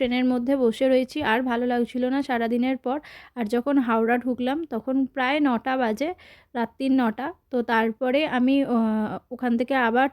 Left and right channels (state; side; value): identical; both; correlation 1.00